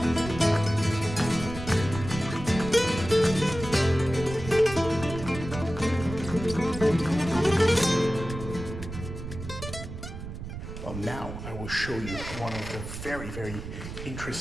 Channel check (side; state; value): right; noise; rumble, 9 dB below the sound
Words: Now I will show you one of the very